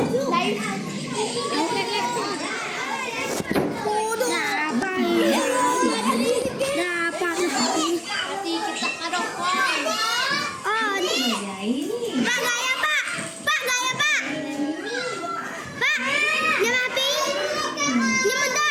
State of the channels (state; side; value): identical; both; correlation 1.00